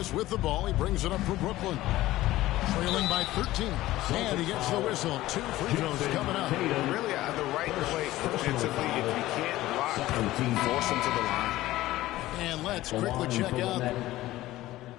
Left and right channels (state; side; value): quieter; right; 16.3 dB